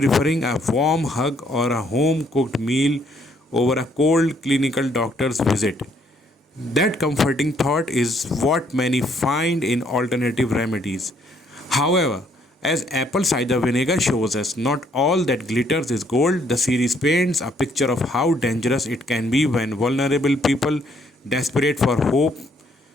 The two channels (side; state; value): both; normal; correlation 0.67